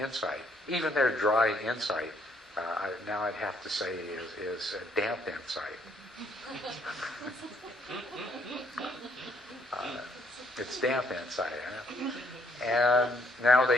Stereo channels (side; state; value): both; normal; correlation 0.69